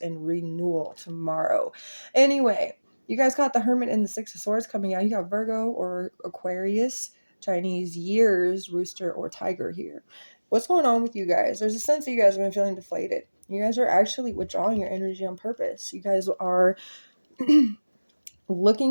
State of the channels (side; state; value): both; inverted; correlation -1.00